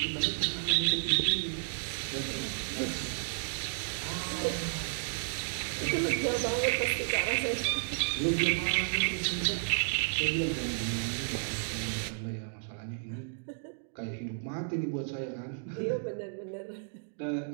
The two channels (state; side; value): silent; left; digital silence